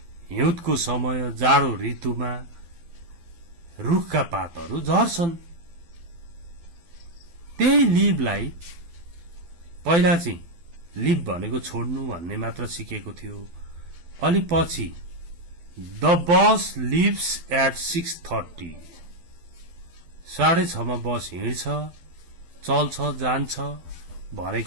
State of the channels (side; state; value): left; late; 12 ms